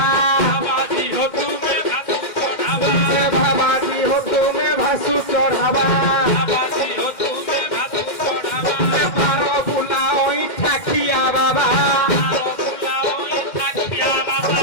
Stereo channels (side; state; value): right; late; 2.1 ms